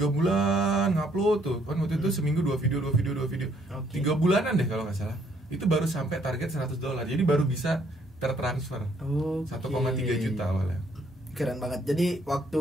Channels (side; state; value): both; normal; correlation 0.67